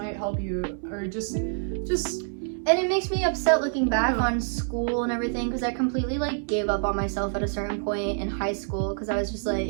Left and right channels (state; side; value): silent; left; 60 dB below the other